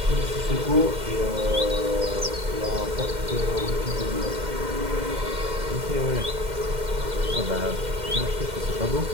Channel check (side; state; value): left; late; 2.1 ms